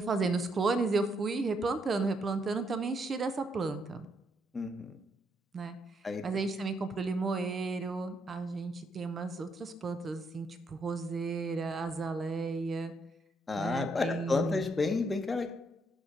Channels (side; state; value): both; normal; correlation 0.75